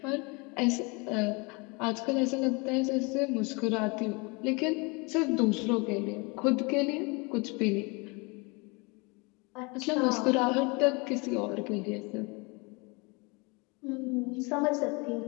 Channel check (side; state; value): right; quieter; 28.9 dB